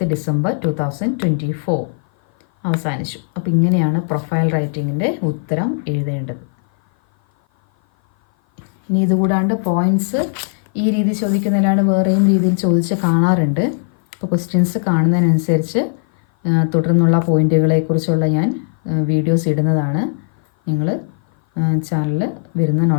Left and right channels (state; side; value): silent; right; 56 dB below the other